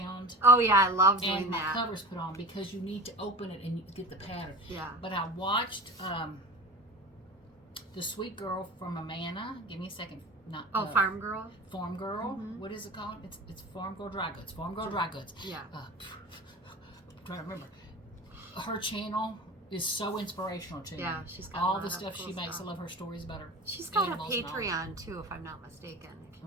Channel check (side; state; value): both; normal; correlation 0.32